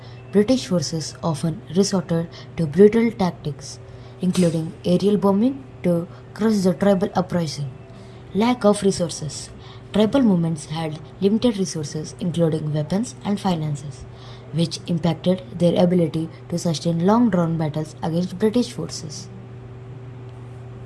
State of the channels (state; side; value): identical; both; correlation 1.00